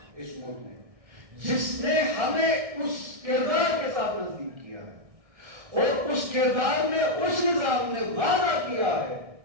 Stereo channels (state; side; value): late; left; 1.6 ms